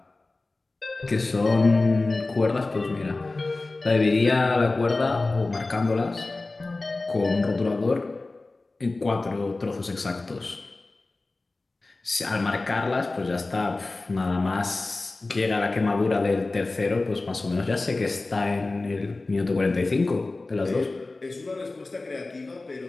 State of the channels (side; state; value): right; quieter; 3.3 dB